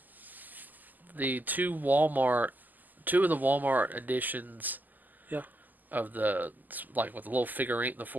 the two of the Walmart editions yeah, of the like with the little figurine, the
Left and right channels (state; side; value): late; left; 0.084 ms